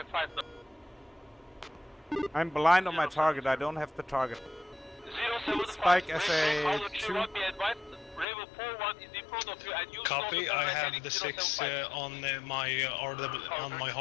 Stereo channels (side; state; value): right; drops out; at 8.2 s